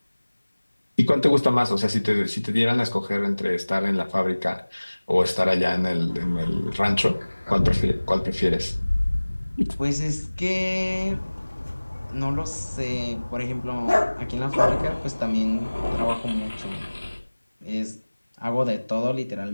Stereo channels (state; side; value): inverted; both; correlation -1.00